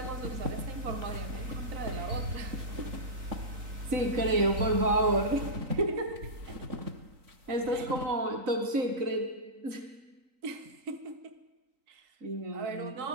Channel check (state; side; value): late; left; 3.8 ms